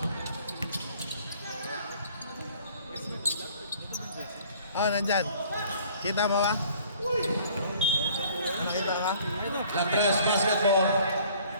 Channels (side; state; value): both; inverted; correlation -0.55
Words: Nandyan. Kita mo ba? Nakita ka? La Tres basketball.